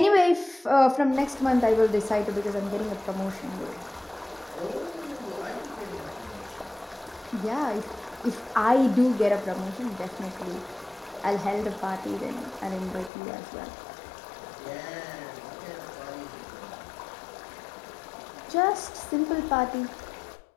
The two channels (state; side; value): drops out; right; at 13.1 s